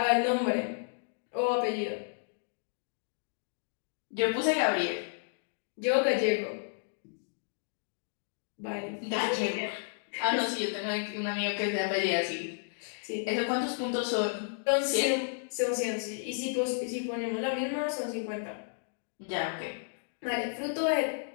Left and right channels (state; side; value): silent; right; digital silence